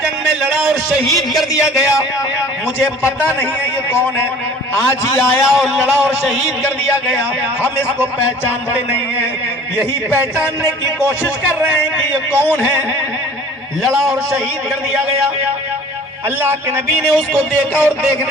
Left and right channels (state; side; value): normal; both; correlation 0.48